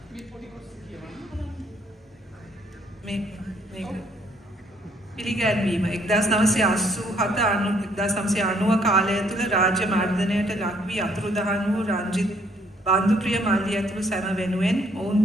පිළිගැන්වීම 1990 කාලය තුළ රාජ්‍ය මර්ධනයට ලක් වී අතුරුදහන් වූ රංජිත් බන්දුප්‍රිය මල්ලි ඇතුළු සැම වෙනුවෙන් ඔවුන්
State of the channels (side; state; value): both; normal; correlation 0.66